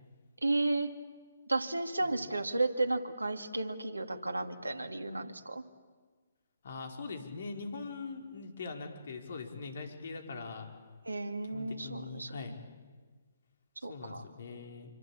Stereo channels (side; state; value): both; inverted; correlation -0.90